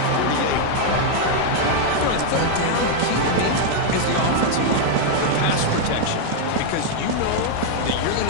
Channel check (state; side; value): different; both; correlation 0.00